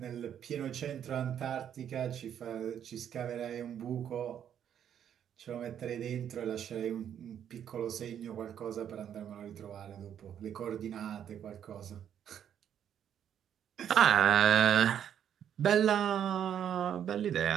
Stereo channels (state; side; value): quieter; left; 9.3 dB